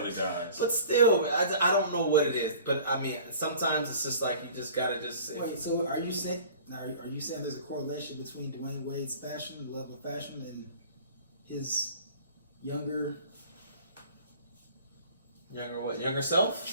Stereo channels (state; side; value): inverted; both; correlation -0.45